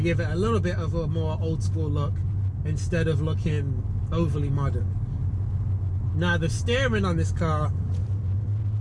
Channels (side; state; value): both; identical; correlation 1.00